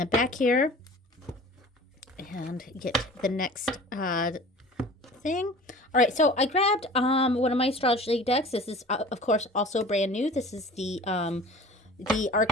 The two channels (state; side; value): normal; both; correlation 0.42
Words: back here and get the next thing. All right, so I grabbed one of my astrology decks. This is, of course, also brand new. This is the